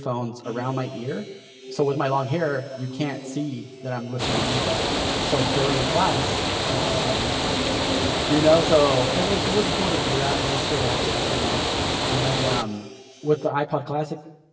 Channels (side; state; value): both; identical; correlation 1.00